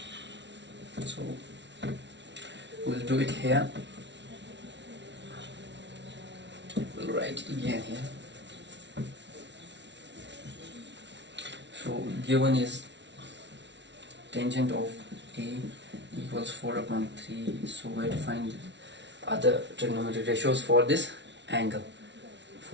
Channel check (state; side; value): late; left; 0.51 ms